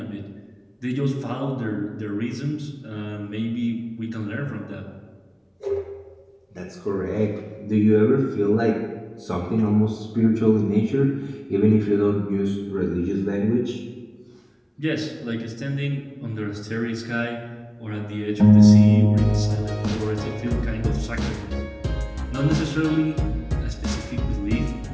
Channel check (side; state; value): both; identical; correlation 1.00